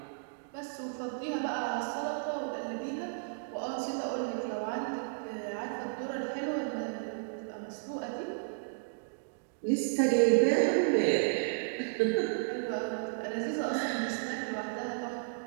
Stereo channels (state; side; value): silent; left; digital silence